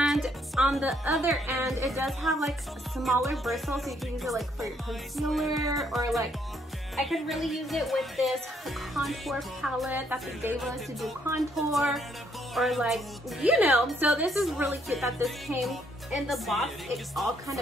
on the other end it does have like smaller bristles, so you can use it like for your concealer, or like I could really use it with this contour palette that they gave us to do contour, or like, you know. So this is really cute that this came in the box. It all kind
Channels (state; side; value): normal; both; correlation 0.70